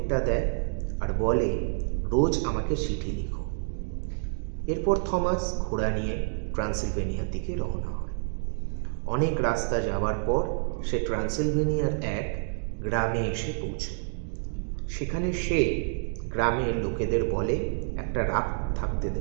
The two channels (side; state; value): left; silent; digital silence